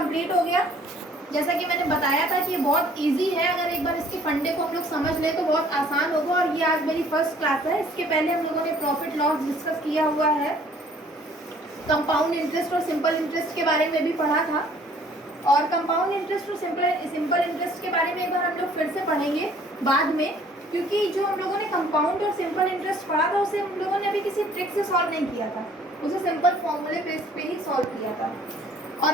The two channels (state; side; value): normal; both; correlation 0.57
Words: हो गया। जैसा कि मैंने बताया था कि ये बहुत इजी है, अगर एक बार इसके फंडे को हम लोग समझ लें तो बहुत आसान होगा। और ये आज मेरी फर्स्ट क्लास है, इसके पहले हम लोगों ने प्रॉफिट लॉस डिस्कस किया हुआ है, कंपाउंड इंटरेस्ट और सिंपल इंटरेस्ट के बारे में भी पढ़ा था, और कंपाउंड इंटरेस्ट और सिंपल इंटरेस्ट के बारे में एक बार हम लोग फिर से पढ़ेंगे बाद में, क्योंकि जो हम लोगों ने कंपाउंड और सिंपल इंटरेस्ट पढ़ा था उसे हम लोगों ने अभी किसी ट्रिक से सॉल्व नहीं किया था, उसे सिंपल फॉर्मूले बेस पे ही सॉल्व किया था।